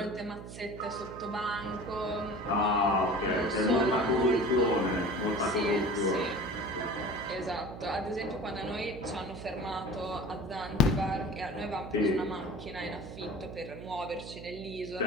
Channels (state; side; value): noise; right; hum, 12 dB below the sound